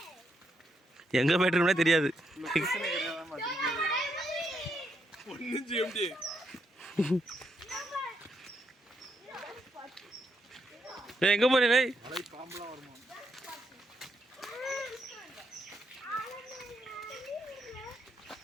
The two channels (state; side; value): normal; both; correlation 0.79